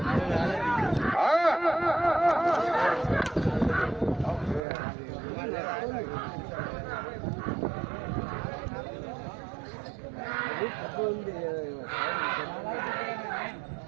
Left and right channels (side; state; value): left; drops out; at 4.6 s